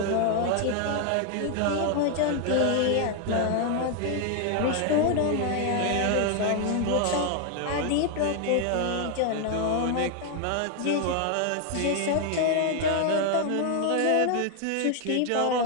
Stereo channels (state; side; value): different; both; correlation 0.00